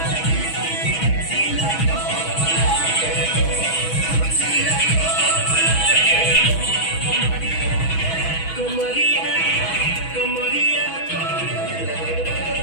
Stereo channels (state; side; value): late; right; 6.2 ms